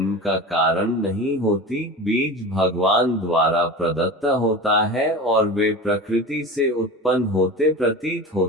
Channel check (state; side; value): normal; both; correlation 0.32